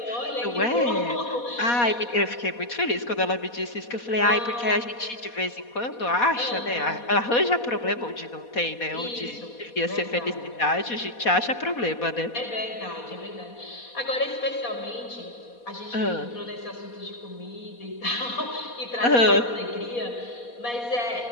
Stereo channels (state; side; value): late; right; 4.2 ms